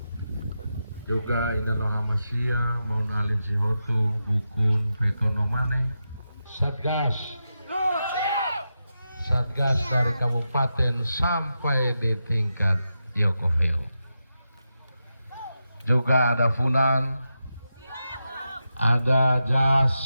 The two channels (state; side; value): inverted; both; correlation -0.89